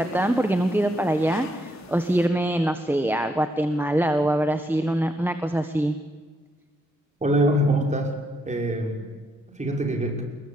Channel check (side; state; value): both; normal; correlation 0.76